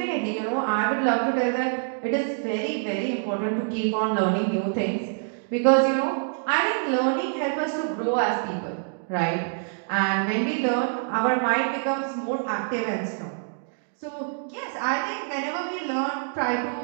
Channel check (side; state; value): left; silent; digital silence